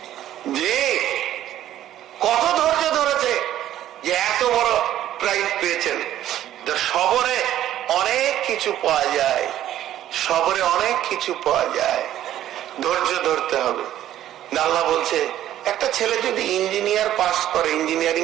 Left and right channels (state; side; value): quieter; left; 12.3 dB